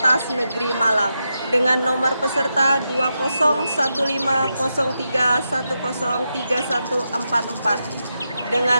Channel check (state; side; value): inverted; both; correlation -0.87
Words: Negeri Malang dengan nomor peserta 201503103144